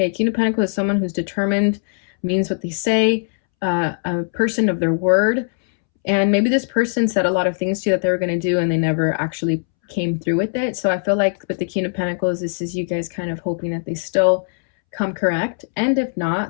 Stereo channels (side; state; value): right; silent; 66 dB below the other